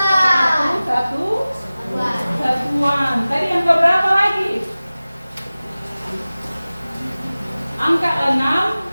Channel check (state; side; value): inverted; both; correlation -0.97